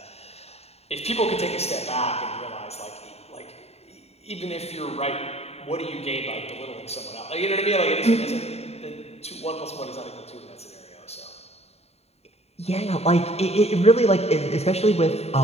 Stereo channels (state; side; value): late; right; 0.30 ms